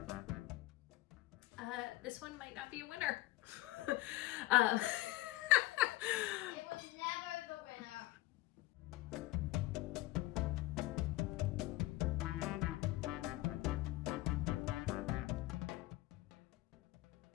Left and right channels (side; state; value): right; quieter; 17.8 dB